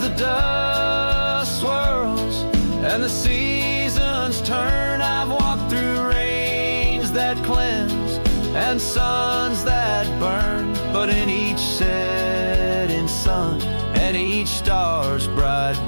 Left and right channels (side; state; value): both; inverted; correlation -1.00